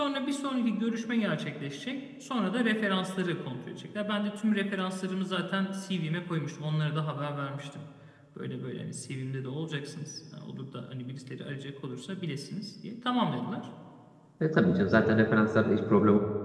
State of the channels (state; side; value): identical; both; correlation 1.00